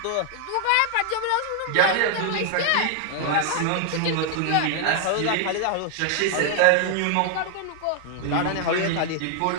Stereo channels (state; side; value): different; both; correlation 0.01